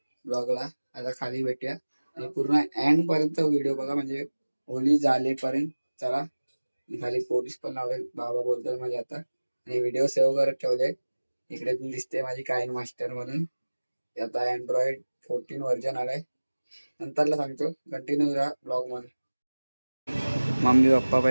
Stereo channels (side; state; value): both; inverted; correlation -1.00